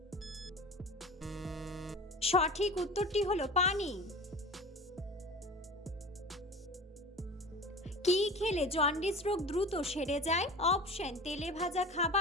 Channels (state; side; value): normal; both; correlation 0.36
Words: সঠিক উত্তরটি হলো পানি। কি খেলে জন্ডিস রোগ দ্রুত সেরে যায়? অপশন তেলে ভাজা